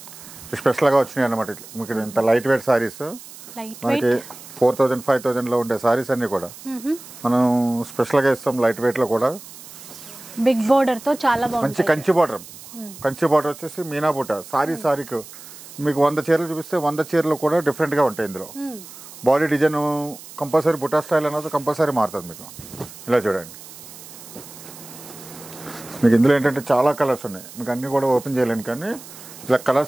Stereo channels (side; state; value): right; noise; hiss, 17 dB below the sound